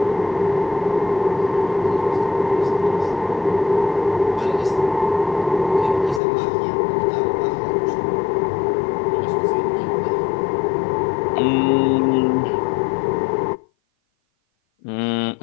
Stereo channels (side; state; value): right; drops out; at 6.2 s